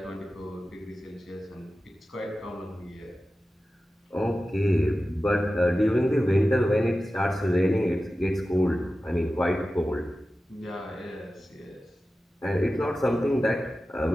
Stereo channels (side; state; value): both; normal; correlation 0.94